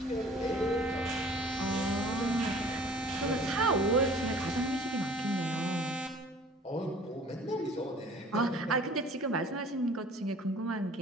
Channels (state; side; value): normal; both; correlation 0.49